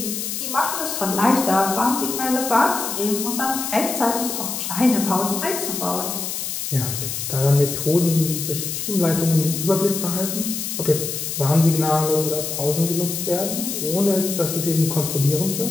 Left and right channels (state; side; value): noise; left; hiss, 4 dB below the sound